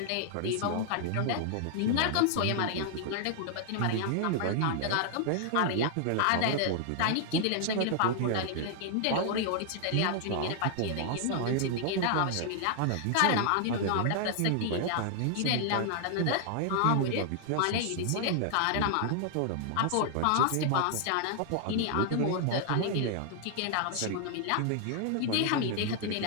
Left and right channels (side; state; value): both; different; correlation 0.00